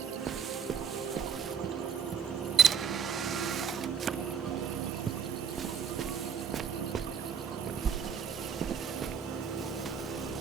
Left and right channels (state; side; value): quieter; left; 7.1 dB